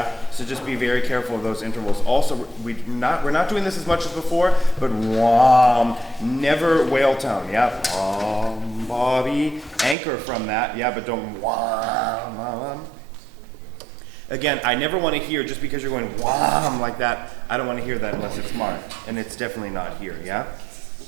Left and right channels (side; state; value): left; drops out; at 10.0 s